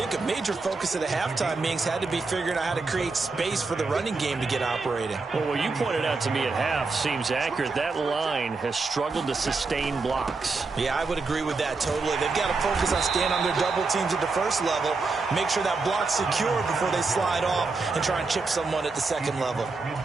a major focus of the halftime meetings had to be figuring out how to create space for the running game to get operating. Well, what you pointed out to me at half seems accurate. That line has struggled to sustain blocks. Yeah, I would agree with that totally. They've got to focus on staying on their double teams at the first level, make sure that block's secure before they slide off and try and chip someone at the second level.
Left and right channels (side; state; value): left; quieter; 4.0 dB